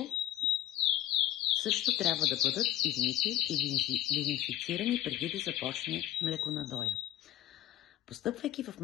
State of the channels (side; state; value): right; quieter; 12.5 dB